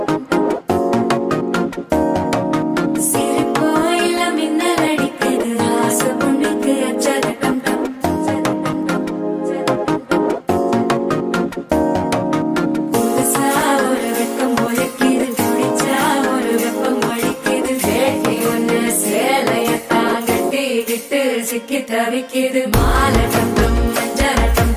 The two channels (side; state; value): both; identical; correlation 1.00